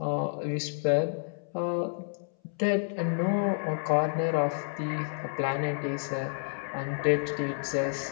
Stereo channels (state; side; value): silent; right; 58 dB below the other